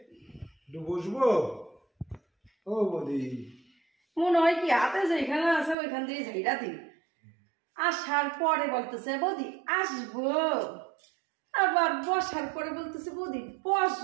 একটু বসবো। ও বৌদি মনে হয় কি হাতে যেখানে আছে ওইখান দিয়ে ঝাইরা দিই। আসার পরে বলতেছে বৌদি আসবো, আবার বসার পরে বলতেছে বৌদি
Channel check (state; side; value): drops out; left; at 5.8 s